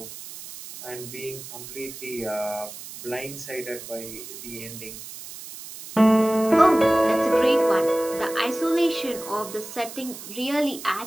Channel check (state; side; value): noise; right; hiss, 13 dB below the sound